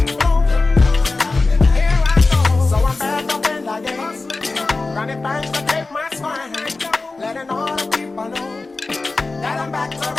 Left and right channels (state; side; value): quieter; right; 3.5 dB